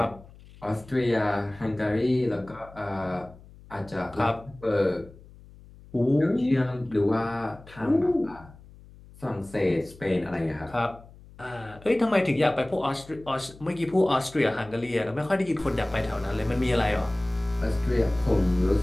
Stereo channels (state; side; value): noise; left; hum, 21 dB below the sound